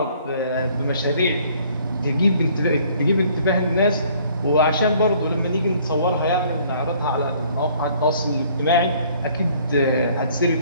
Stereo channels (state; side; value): inverted; both; correlation -0.59